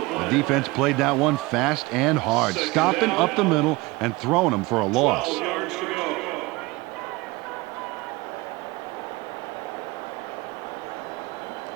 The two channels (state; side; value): quieter; left; 22.4 dB